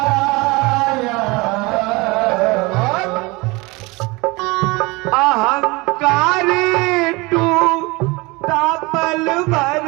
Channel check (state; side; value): quieter; left; 24.4 dB